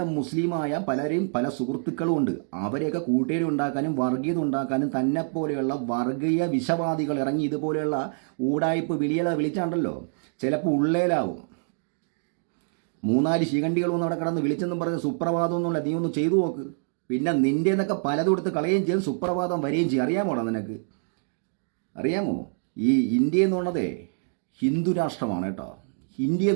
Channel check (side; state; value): left; silent; digital silence